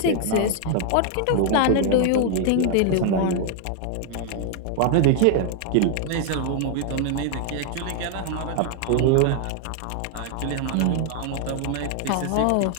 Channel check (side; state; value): both; different; correlation 0.00